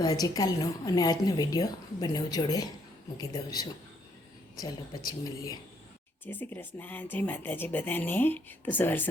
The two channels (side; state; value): both; normal; correlation 0.70